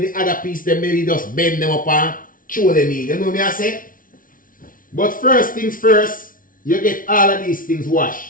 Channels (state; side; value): late; right; 0.39 ms